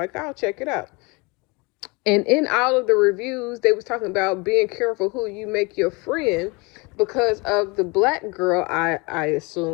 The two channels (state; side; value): quieter; right; 27.6 dB